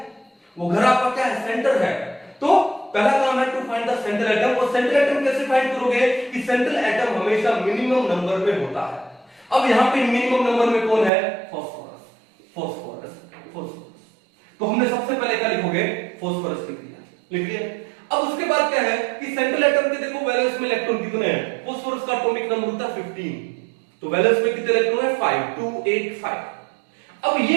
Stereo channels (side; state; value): left; drops out; at 11.1 s